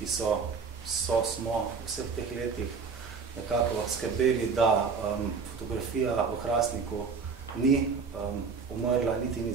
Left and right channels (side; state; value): left; quieter; 5.3 dB